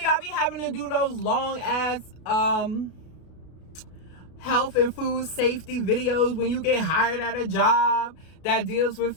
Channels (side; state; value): right; late; 33 ms